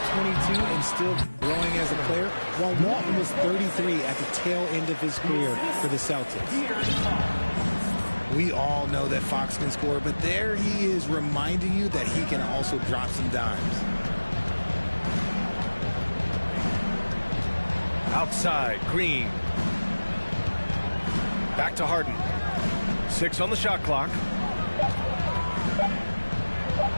and still growing as a player, while Walton was 33 at the tail end of his career for the Celtics. We all know that Fox can score, but there he is reminding you that he can also drop some dimes. Outside, Green. Back to Harden. 6 on the shot clock.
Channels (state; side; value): inverted; both; correlation -1.00